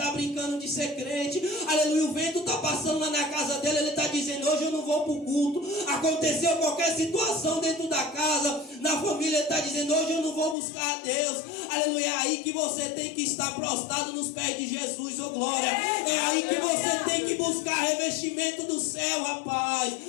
brincando de ser crente. Aleluia, o vento está passando lá na casa dele, ele está dizendo, dizendo, hoje eu não vou para o culto. Aconteceu qualquer situação dentro da casa, na família, ele está dizendo, hoje eu não vou buscar a Deus. Aleluia, é aí que você tem que estar prostrado nos pés de Jesus, oh glória. É aí que você tem que buscar revestimento do céu, rapaz.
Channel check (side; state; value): right; drops out; at 10.6 s